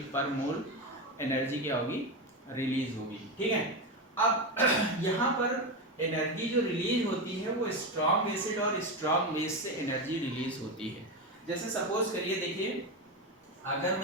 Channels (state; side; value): normal; both; correlation 0.15